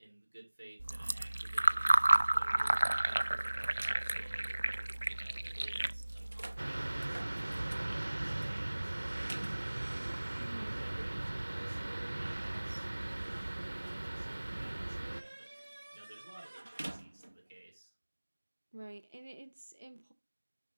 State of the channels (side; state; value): both; inverted; correlation -1.00